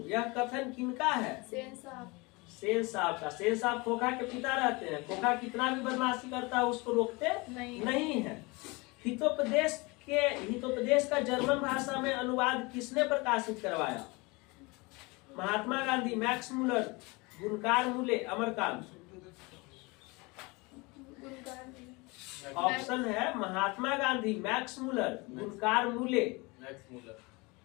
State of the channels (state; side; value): quieter; right; 25.9 dB